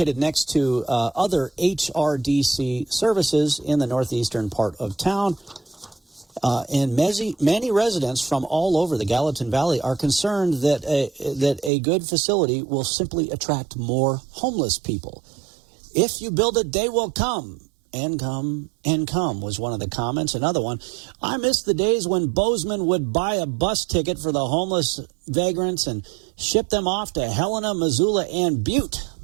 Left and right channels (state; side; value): drops out; left; at 11.7 s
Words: next to other HRDC services in the northeastern part of town. And many residents from all over the Gallatin Valley are concerned that a good facility will simply attract more homeless people. If you build it, they will come. And come was one of the comments. Another one, I miss the days when Bozeman would buy a bus ticket for the homeless vagrants and ship them off to Helena, Missoula, and Butte.